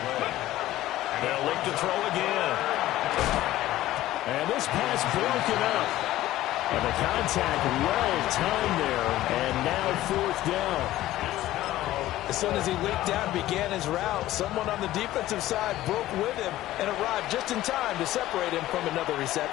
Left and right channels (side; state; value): right; quieter; 15.1 dB